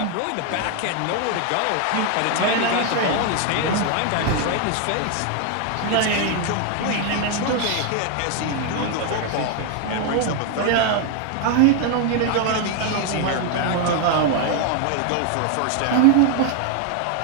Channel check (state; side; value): different; both; correlation 0.01